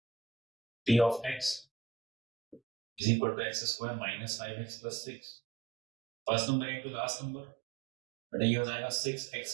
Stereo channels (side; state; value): left; drops out; at 3.0 s